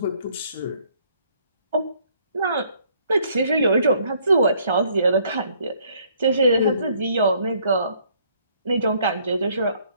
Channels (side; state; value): both; inverted; correlation -0.64